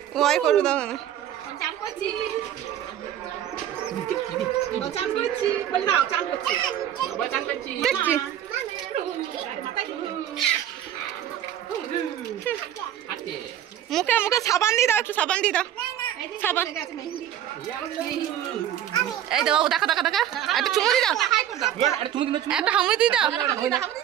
ওই করু দাও না, মুখে মুখে সাবান দিয়ে দাও, একটু সাবান দিয়ে দাও, সাবান। এই দাও দেখা দেখা দেখা, একটা চুমু দিয়ে দাও, একটা হামি দিয়ে দাও।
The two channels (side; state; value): left; quieter; 10.9 dB